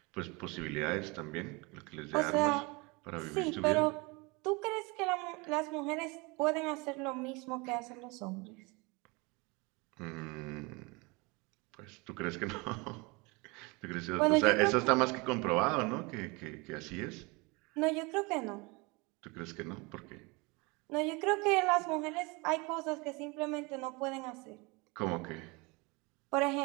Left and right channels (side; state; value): left; quieter; 27.1 dB